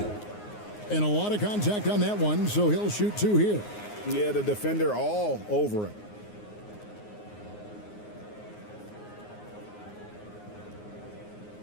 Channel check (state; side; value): late; right; 9.6 ms